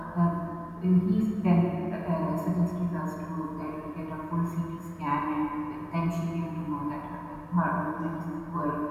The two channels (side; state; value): both; identical; correlation 1.00